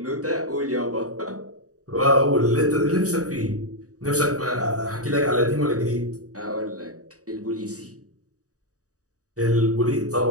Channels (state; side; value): late; left; 0.66 ms